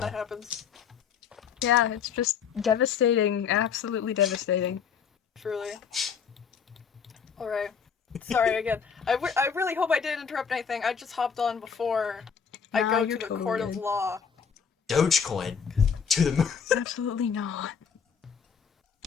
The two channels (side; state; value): right; quieter; 6.7 dB